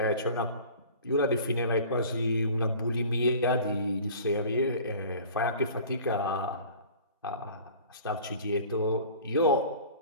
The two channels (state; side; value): inverted; both; correlation -0.44